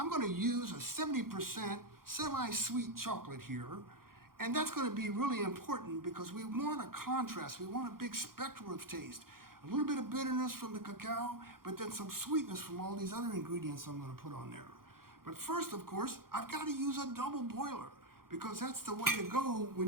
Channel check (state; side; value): late; left; 0.92 ms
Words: going to use a 70% semi-sweet chocolate here, and that's going to be really important because we want a contrast. We want a big spectrum of taste. A little bit of bitterness from the cacao, but then some sweetness from all these other ingredients I'm going to put on there. But first, of course, I've got to use a double boiler because that's the way to go when